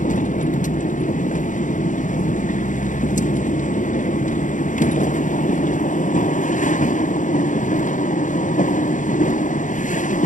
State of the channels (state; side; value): late; right; 0.37 ms